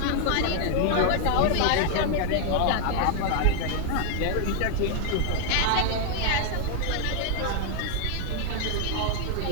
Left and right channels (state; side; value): different; both; correlation 0.00